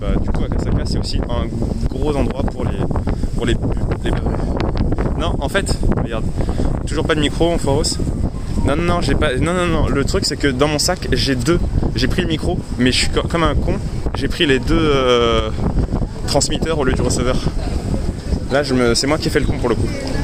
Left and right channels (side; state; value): both; identical; correlation 1.00